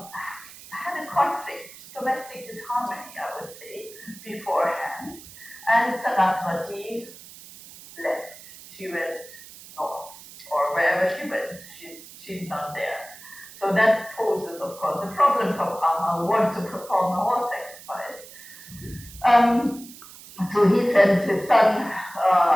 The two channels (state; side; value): noise; right; hiss, 18 dB below the sound